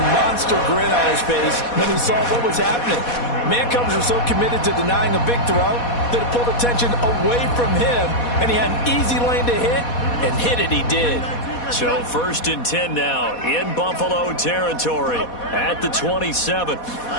monster grin on his face when he saw what was happening. Mancovers were so committed to denying a big throw that it pulled attention away from him, and he had an easy lane to hit, and hit it he did. So 1st and 10 now in Buffalo territory at the 27.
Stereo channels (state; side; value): late; right; 4.2 ms